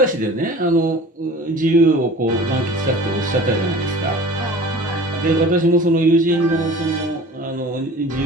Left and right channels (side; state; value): both; normal; correlation 0.42